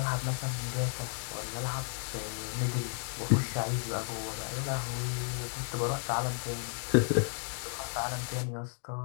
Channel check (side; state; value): right; silent; digital silence